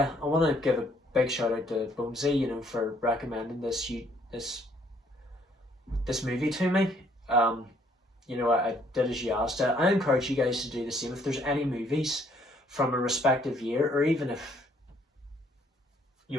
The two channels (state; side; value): normal; both; correlation 0.65